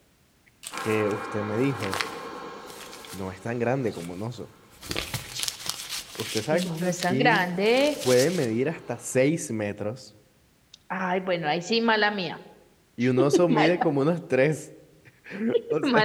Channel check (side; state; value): both; identical; correlation 1.00